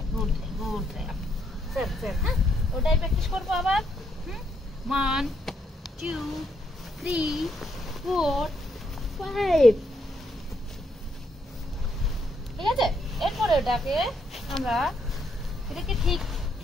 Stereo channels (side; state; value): both; normal; correlation 0.75